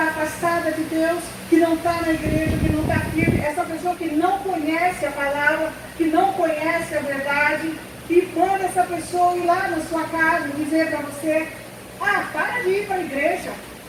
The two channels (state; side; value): identical; both; correlation 1.00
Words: afastada de Deus, que não está na igreja, que não está firme, essa pessoa que não conhece a palavra, que não conhece a verdade, e manda essa pessoa ir lá na sua casa e dizer para você: ah, para de ir para a igreja,